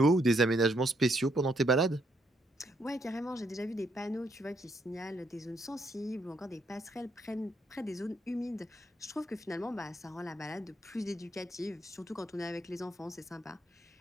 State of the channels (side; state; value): both; normal; correlation 0.74